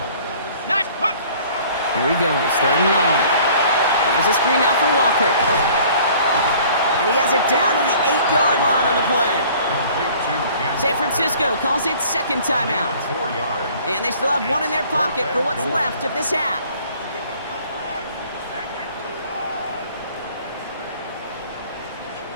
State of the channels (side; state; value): both; inverted; correlation -0.52